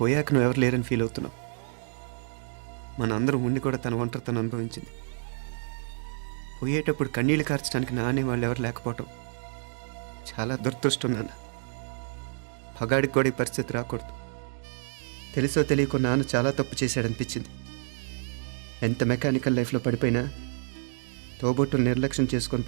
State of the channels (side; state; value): left; silent; digital silence